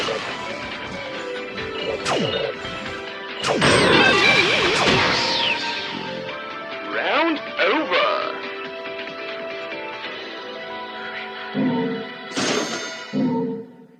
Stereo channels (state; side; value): identical; both; correlation 1.00